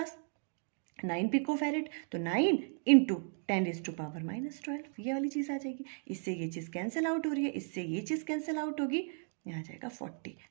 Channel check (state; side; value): silent; left; 54 dB below the other